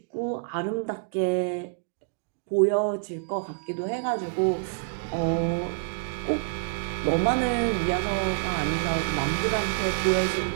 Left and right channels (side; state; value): left; silent; digital silence